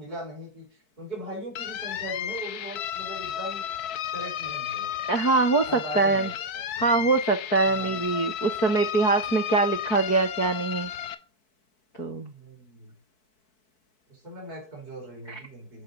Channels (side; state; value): right; late; 4.6 ms